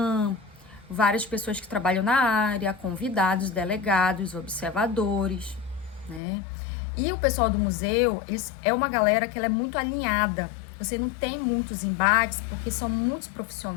várias pessoas que trabalham na área, convidados, delegados, observadores, né? E o pessoal do museu, é uma galera que ela é muito alinhada você não tem muitos embates, porque são muitos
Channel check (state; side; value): drops out; right; at 6.2 s